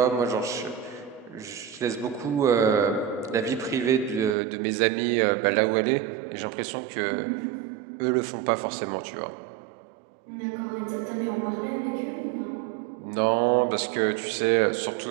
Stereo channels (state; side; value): drops out; left; at 4.4 s